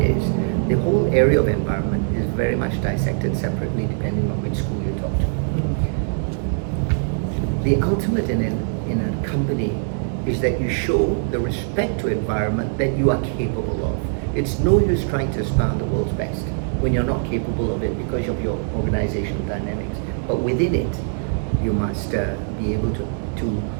the whole area of environment is very much dissected separately depending on which school you talk to. The ultimate in a company is that you show the respect to environment that you are capable of. It's no use trying to aspire the world's best when you're not capable of it because of your organizational dynamics. But within it, you must be able to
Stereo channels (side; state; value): left; silent; digital silence